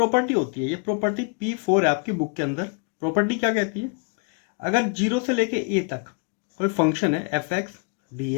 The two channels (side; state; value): right; quieter; 34.9 dB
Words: होती है, ये प्रॉपर्टी P4 है आपकी बुक के अंदर। प्रॉपर्टी क्या कहती है, अगर 0 से लेके a तक कोई फंक्शन है एफ एक्स डी